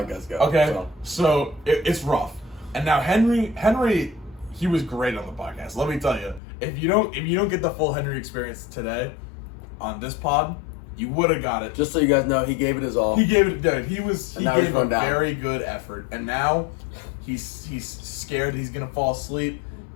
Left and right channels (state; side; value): drops out; right; at 6.4 s